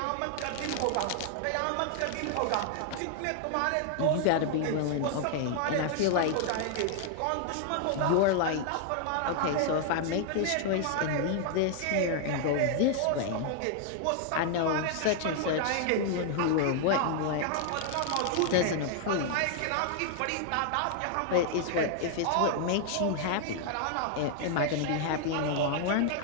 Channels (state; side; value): different; both; correlation 0.00